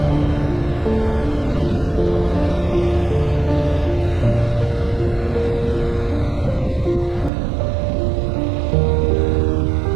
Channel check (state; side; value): drops out; left; at 7.3 s